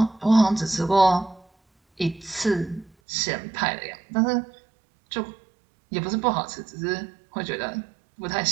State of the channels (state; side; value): drops out; left; at 2.9 s